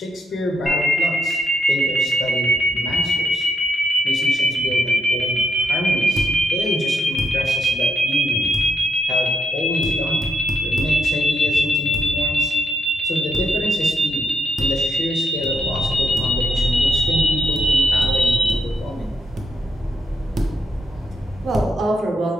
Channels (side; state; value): both; normal; correlation 0.79